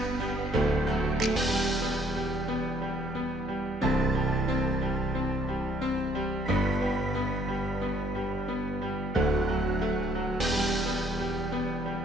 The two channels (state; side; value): normal; both; correlation 0.65